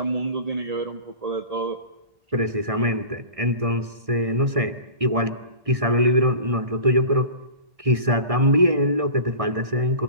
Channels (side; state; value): left; late; 1.6 ms